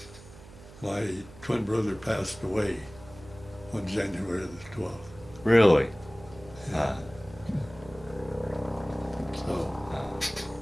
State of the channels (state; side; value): noise; right; hum, 19 dB below the sound